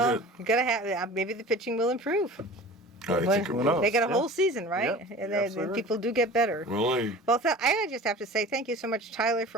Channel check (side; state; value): both; normal; correlation 0.39